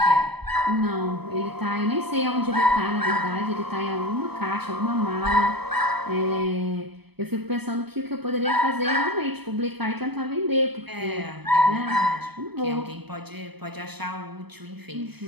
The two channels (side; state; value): left; late; 0.97 ms